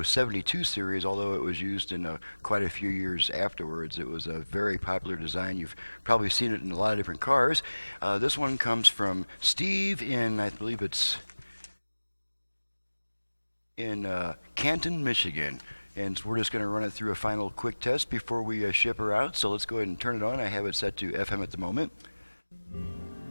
72 series, although it was used in quite a few years afterwards. It was a very popular design. You've probably seen it in a lot of different cars. This one comes from Steve in, I believe it's in Canton, Michigan. And so we're just going to run it through a final quick test before we ship her out. So let's go ahead and turn it on. I have it set to FM at the moment.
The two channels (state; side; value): inverted; both; correlation -1.00